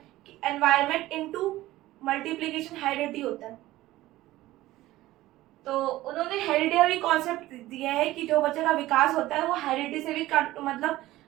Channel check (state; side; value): quieter; left; 16.6 dB